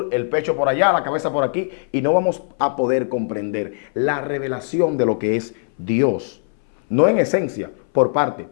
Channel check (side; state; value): right; silent; 61 dB below the other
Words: el pecho por allá, la cabeza por aquí, y no vamos a poder comprender la revelación de lo que es Dios. No en esencia, por parte,